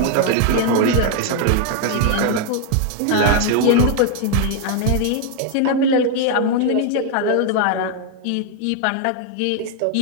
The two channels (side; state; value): both; different; correlation 0.00